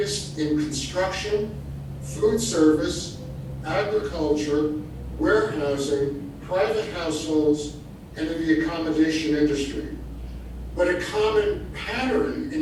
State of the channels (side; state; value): both; identical; correlation 1.00